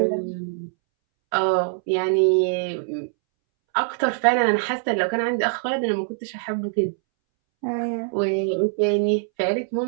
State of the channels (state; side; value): silent; left; 63 dB below the other